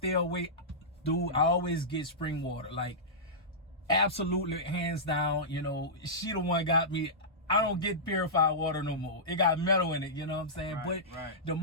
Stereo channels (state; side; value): normal; both; correlation -0.15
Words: away. Dude, I always get spring water. Like, absolutely, hands down, you know, she the one got me. I don't get purified water no more. It got metal in it, you know what I'm saying? Right, But right. the